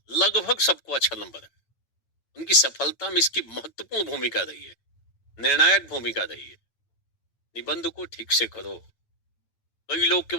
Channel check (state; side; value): late; right; 8.9 ms